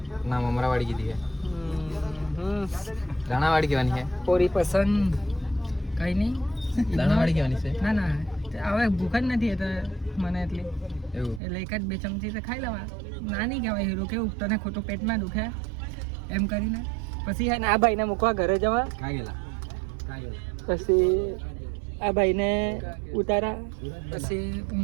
ના મમરાવાળી કીધી છે. દાણાવાળી કહેવાની છે. પૂરી પસંદ કઈ નહીં, દાણાવાળી કહેવાની છે. ના હવે ભૂખ જ નથી એટલે મને એટલી એવું એટલે 1-2 ચમચી તો ખાઈ લેવા. નાની કહેવાય હીરો, કેવું તને ખોટું પેટમાં દુખે એમ કરીને. પછી હે ને આ ભાઈને મૂકવા ઘરે જવા. કાં ગયેલા? પછી આ ભાઈને ઉતારા, પછી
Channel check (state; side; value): drops out; left; at 11.4 s